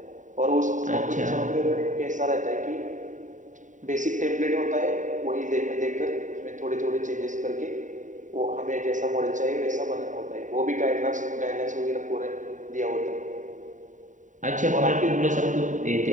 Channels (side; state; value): left; late; 0.36 ms